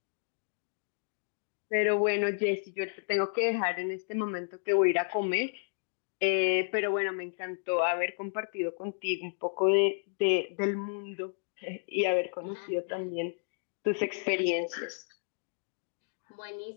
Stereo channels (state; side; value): silent; right; digital silence